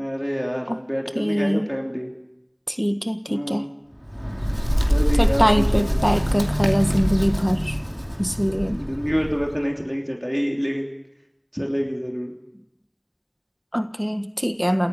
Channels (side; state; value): both; identical; correlation 1.00